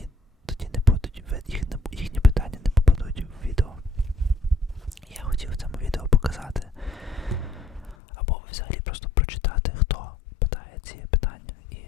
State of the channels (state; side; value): drops out; right; at 8.0 s